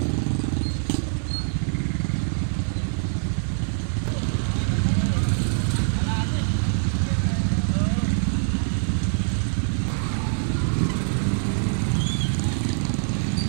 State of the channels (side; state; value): left; silent; digital silence